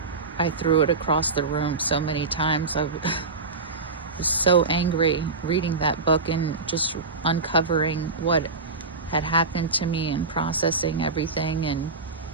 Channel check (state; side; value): quieter; left; 4.0 dB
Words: threw it across the room so many times. I was so angry reading that book and just uncovering what had happened to me and processing everything